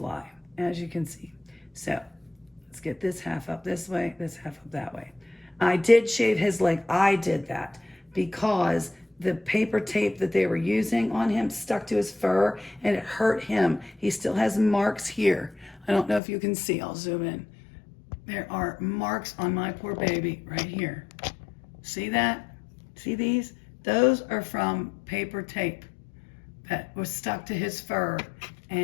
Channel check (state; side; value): drops out; right; at 16.2 s